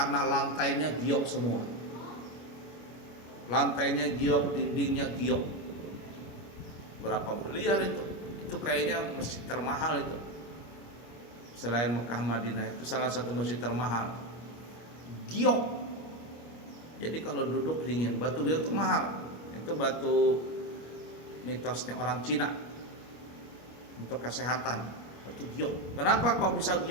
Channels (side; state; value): right; late; 25 ms